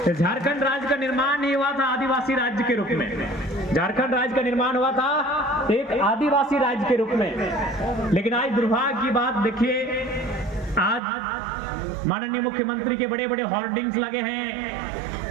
झारखंड राज्य का निर्माण ही हुआ था आदिवासी राज्य के रूप में। झारखंड राज्य का निर्माण हुआ था एक आदिवासी राज्य के रूप में। लेकिन आज दुर्भाग्य की बात देखिए, आज माननीय मुख्यमंत्री के बड़े बड़े होर्डिंग्स लगे हैं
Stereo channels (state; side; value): drops out; left; at 11.0 s